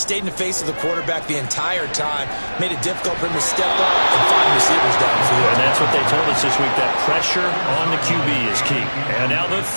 in the face of the quarterback the entire time, made it difficult for him to step up and find receivers downfield. And that's what they told us this week, that pressure on the QB is key. And now the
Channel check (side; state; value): both; inverted; correlation -1.00